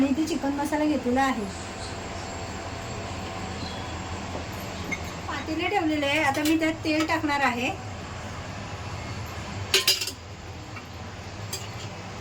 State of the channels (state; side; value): identical; both; correlation 1.00